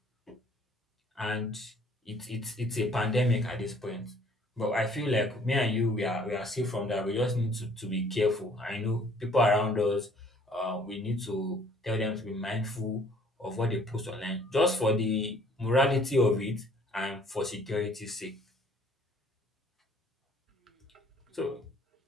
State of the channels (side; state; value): both; normal; correlation 0.58